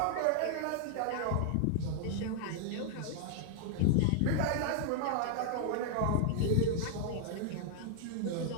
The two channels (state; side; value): different; both; correlation -0.01